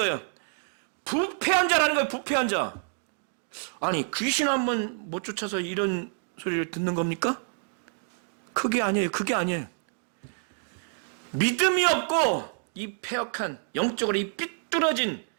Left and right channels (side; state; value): left; silent; digital silence